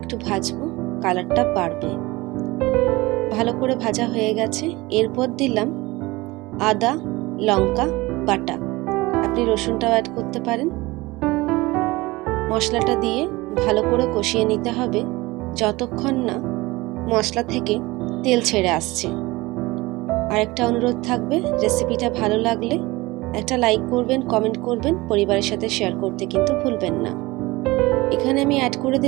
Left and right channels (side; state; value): left; quieter; 21.3 dB